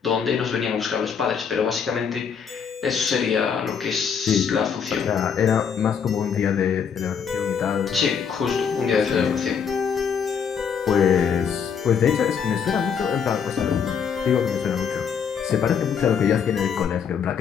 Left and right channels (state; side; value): quieter; right; 7.0 dB